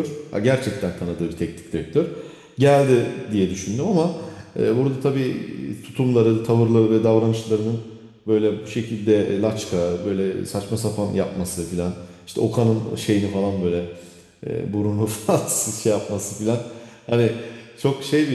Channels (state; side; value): identical; both; correlation 1.00